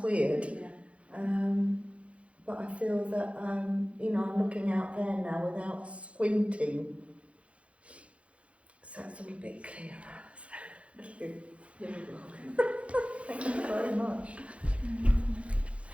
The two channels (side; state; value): left; late; 0.062 ms